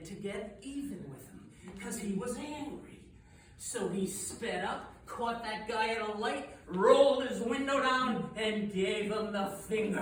to get even with him because he was angry. So he sped up, caught that guy at a light, rolled his window down, and gave him the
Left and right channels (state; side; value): identical; both; correlation 1.00